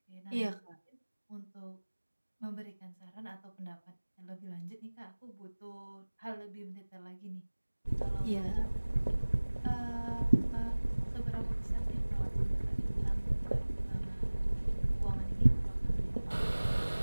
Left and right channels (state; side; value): inverted; both; correlation -1.00